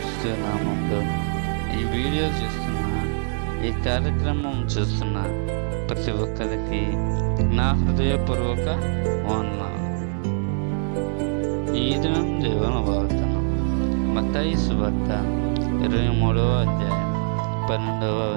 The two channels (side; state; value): left; silent; 63 dB below the other